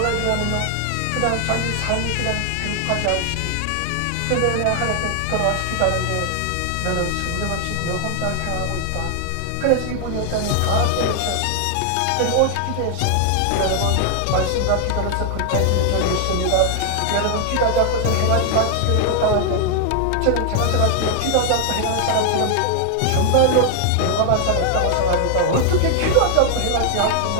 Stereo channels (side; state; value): both; different; correlation 0.00